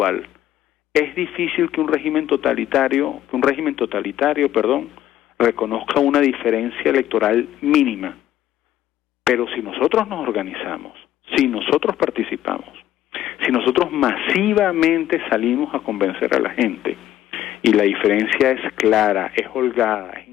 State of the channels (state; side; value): quieter; right; 12.6 dB